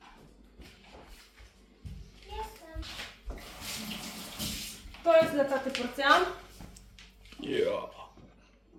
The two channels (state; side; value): identical; both; correlation 1.00